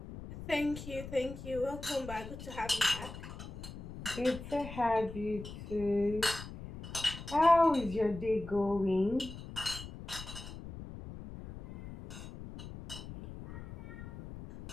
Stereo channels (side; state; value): left; noise; rumble, 11 dB below the sound